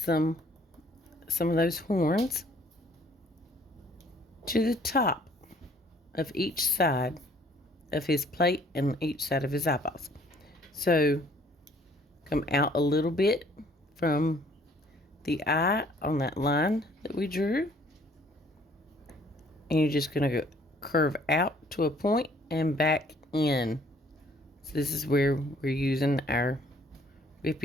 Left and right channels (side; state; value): both; normal; correlation 0.59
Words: of those horns to the top of each side of his plate and each side of his eyeballs. So come out a little bit from the eye on that line that we drew, and you're just going to curve out to a point and back in. So this is where we're using our